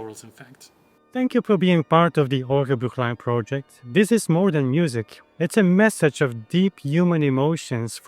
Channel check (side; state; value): both; identical; correlation 1.00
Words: in fact. Thank you for being part of the Orgelbüchlein project. This is more than music. It's a message of deep human emotions,